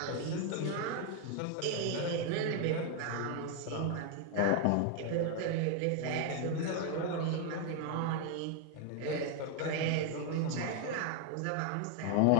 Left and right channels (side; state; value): both; different; correlation 0.00